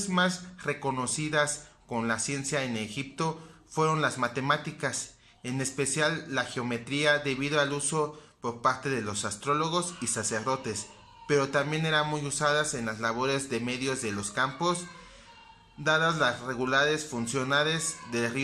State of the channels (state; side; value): identical; both; correlation 1.00